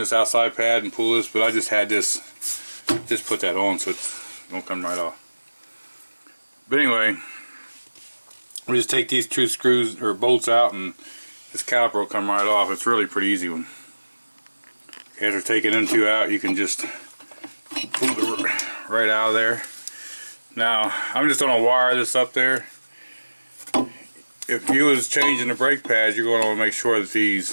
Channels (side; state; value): both; inverted; correlation -1.00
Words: outside pad, and pull this, but I just had this, just put that on so it won't come right off. But anyway, we just take these two screws or bolts out and this caliper will come right off. It's really pretty easy one. After taking them two out, you can just pull it right out of there. Now, I'm just going to wire this up there. If you was changing the brake pads, you're going to want to make sure that